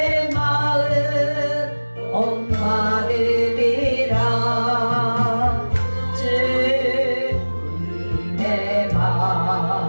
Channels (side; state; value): both; inverted; correlation -1.00